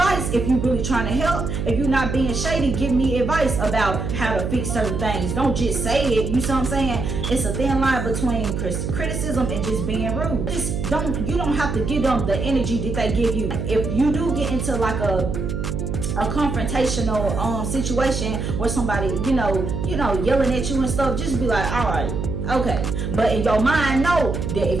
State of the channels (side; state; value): right; noise; hum, 3 dB below the sound